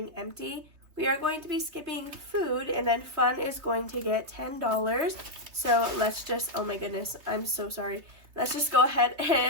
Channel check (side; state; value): left; late; 3.3 ms